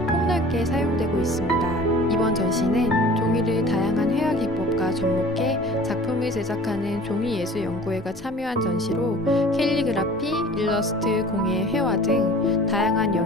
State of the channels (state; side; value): normal; both; correlation 0.45